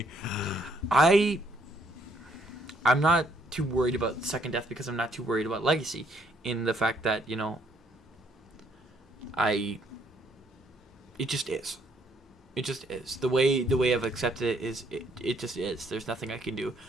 I'm not too worried about second death because I'm not too worried about legacy, in the fact that it just is. It just is. The way I've accepted it is it just is. There's nothing I can do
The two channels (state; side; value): normal; both; correlation 0.68